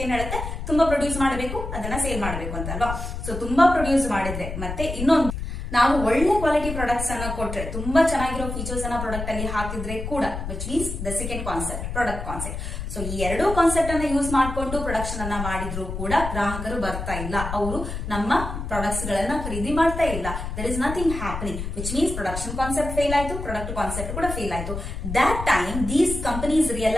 ಏನ್ ಹೇಳುತ್ತೆ, ತುಂಬಾ ಪ್ರೊಡ್ಯೂಸ್ ಮಾಡಬೇಕು, ಅದನ್ನ ಸೇಲ್ ಮಾಡಬೇಕು ಅಂತ ಅಲ್ವಾ. ಸೊ ತುಂಬಾ ಪ್ರೊಡ್ಯೂಸ್ ಮಾಡಿದ್ರೆ, ಮತ್ತೆ ಇನ್ನೊಂದು, ನಾವು ಒಳ್ಳೆ ಕ್ವಾಲಿಟಿ ಪ್ರಾಡಕ್ಟ್ಸ್ ಅನ್ನ ಕೊಟ್ರೆ, ತುಂಬಾ ಚೆನ್ನಾಗಿರೋ ಫೀಚರ್ಸ್ ಅನ್ನ ಪ್ರಾಡಕ್ಟ್ ಅಲ್ಲಿ ಹಾಕಿದ್ರೆ ಕೂಡ, which means the second concept, product concept. So ಈ ಎರಡೂ ಕಾನ್ಸೆಪ್ಟ್ ಅನ್ನ ಯೂಸ್ ಮಾಡಿಕೊಂಡು ಪ್ರೊಡಕ್ಷನ್ ಅನ್ನ ಮಾಡಿದ್ರು ಕೂಡ ಗ್ರಾಹಕರು ಬರ್ತಾ ಇಲ್ಲ, ಅವರು ನಮ್ಮ ಪ್ರಾಡಕ್ಟ್ಸ್ ಗಳನ್ನ ಖರೀದಿ ಮಾಡ್ತಾ ಇಲ್ಲ. There is nothing happening, which means production concept fail ಆಯ್ತು, ಪ್ರಾಡಕ್ಟ್ ಕಾನ್ಸೆಪ್ಟ್ ಕೂಡ ಫೇಲ್ ಆಯ್ತು. That time these companies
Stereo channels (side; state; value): left; noise; rumble, 6 dB below the sound